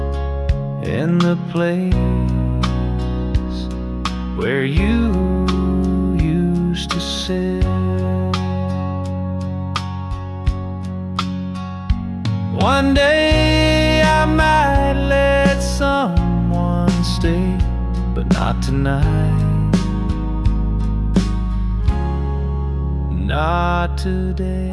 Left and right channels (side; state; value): both; identical; correlation 1.00